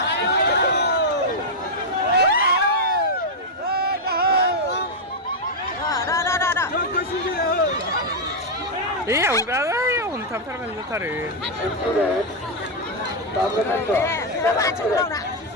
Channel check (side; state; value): both; normal; correlation -0.02